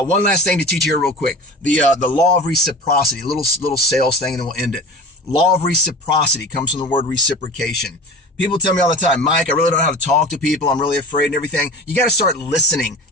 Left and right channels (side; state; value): both; normal; correlation 0.34